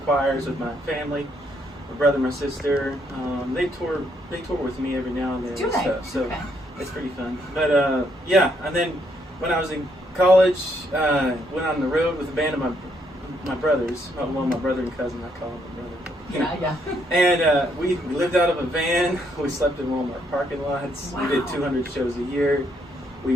choirs with my family, my brother, my sister. They tour with me every now and then and stuff. So it's pretty fun. But and then when I was in college, went on the road with a band of my brothers. Well, my brother and cousin, I call him my brother. And we lived out of a van. We slept in Walmart parking lots. Wow. We did 200 shows a year. We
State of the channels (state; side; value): normal; both; correlation 0.73